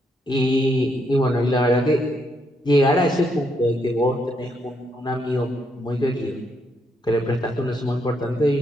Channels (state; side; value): normal; both; correlation 0.76